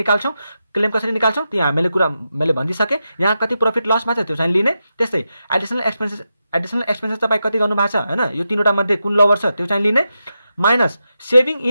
क्लेम कसरी निकाल्छौँ त्यो मैले भनिदिइसकेँ। यहाँ कति प्रफिट लसमा छ त्यो चाहिँ लिने। त्यस्तै एडिसनल एक्सपेन्सेस तपाईँ कति गर्नु भएको छ हैन, यो तीनवटा मध्ये कुन लोवर छ त्यो चाहिँ लिने, minus saving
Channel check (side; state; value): both; inverted; correlation -0.88